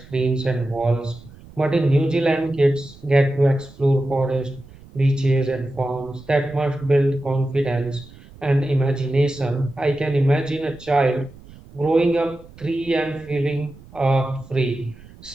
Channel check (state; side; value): noise; right; rumble, 21 dB below the sound